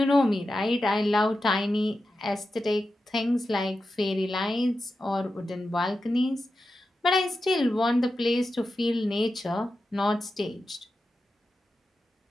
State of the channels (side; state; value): both; normal; correlation 0.90